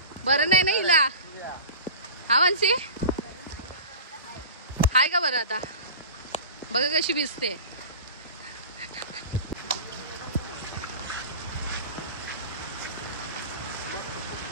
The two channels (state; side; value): inverted; both; correlation -0.35